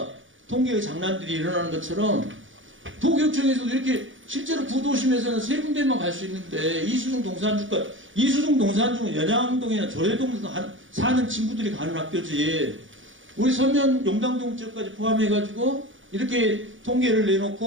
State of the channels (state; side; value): late; left; 0.56 ms